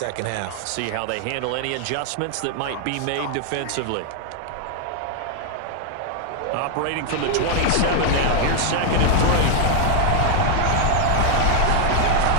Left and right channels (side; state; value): both; different; correlation 0.00